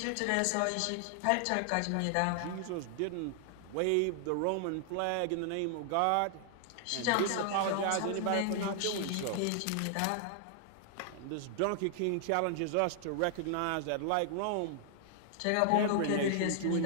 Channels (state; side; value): different; both; correlation 0.00